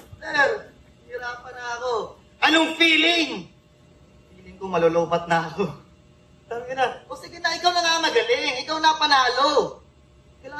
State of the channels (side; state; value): both; identical; correlation 1.00